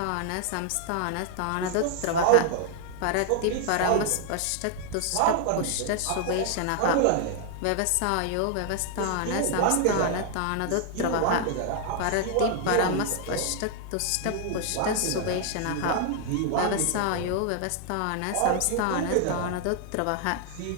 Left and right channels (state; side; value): different; both; correlation 0.00